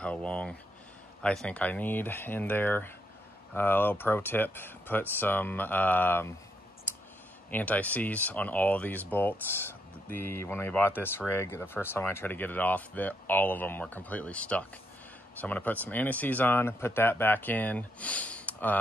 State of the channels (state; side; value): normal; both; correlation 0.77